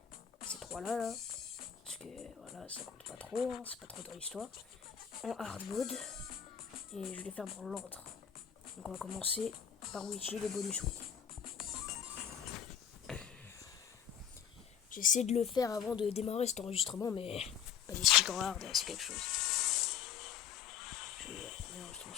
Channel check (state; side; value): quieter; right; 8.3 dB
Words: ces trois-là, là. Parce que voilà, ça compte pas trop, hein, c'est pas trop dans l'histoire. En hard mode, et je vais les faire dans l'ordre. Donc on va commencer par Witchy, les bonus week. J'essaie de le faire avant de démarrer cet enregistrement, mais pas des sticks en hard, c'est quelque chose. Je vais l'enregistrement